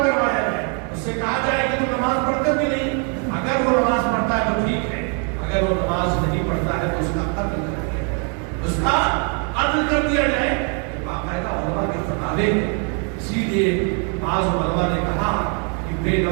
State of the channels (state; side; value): quieter; left; 38.9 dB